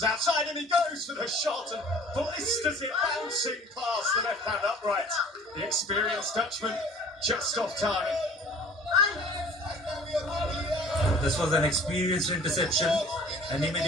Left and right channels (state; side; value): normal; both; correlation 0.47